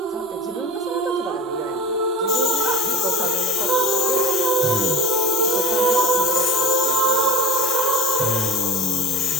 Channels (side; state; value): both; normal; correlation 0.38